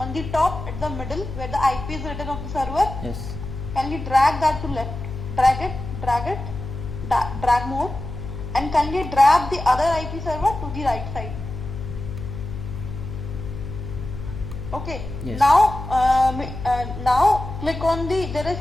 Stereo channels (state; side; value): noise; left; hum, 8 dB below the sound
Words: the top, at the middle, where the IP is written of the server, Yes. kindly drag that to left. Drag more, and kindly drag the other IP server to the right side. Okay. Yes. Now click on there is